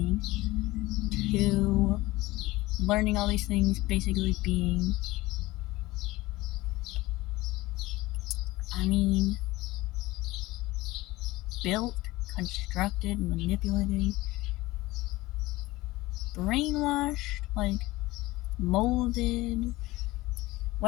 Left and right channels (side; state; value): right; quieter; 19.4 dB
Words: to learning all these things, basically being, built, constructed, manipulated, brainwashed, molded,